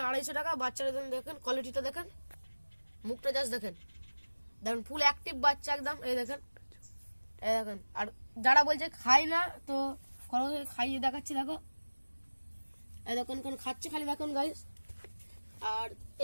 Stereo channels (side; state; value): both; inverted; correlation -1.00